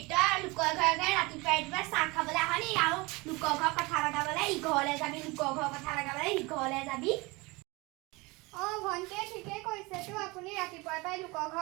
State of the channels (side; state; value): left; quieter; 24.5 dB